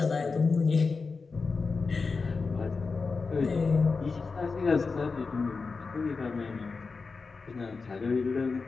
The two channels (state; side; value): quieter; right; 4.4 dB